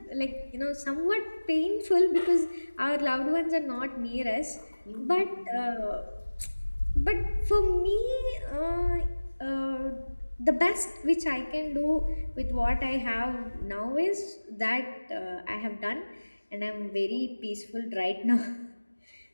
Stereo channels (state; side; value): inverted; both; correlation -1.00